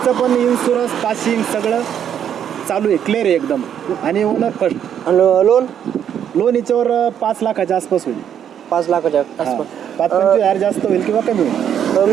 पण इन्शुरन्स पासिंग सगळं चालू आहे, क्लिअर आहे एकदम. आणि ओनर फर्स्ट. लोन हिच्यावर 5 लाखाच्या आसपास होईल. 5 लाखाच्या आसपास. 5-25,000 जास्त होईल किंवा कमी होईल.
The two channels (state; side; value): quieter; left; 9.2 dB